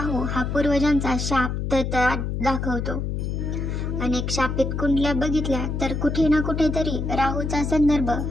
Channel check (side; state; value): left; noise; hum, 2 dB below the sound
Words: हा पूर्वजांचा शाप तळतळाट दाखवतो. अनेक शापित कुंडल्या बघितल्या तर कुठे ना कुठेतरी राहूचा संदर्भ